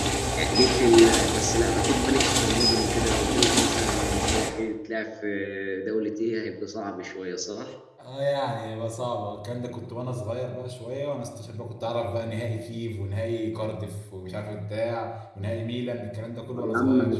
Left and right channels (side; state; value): both; identical; correlation 1.00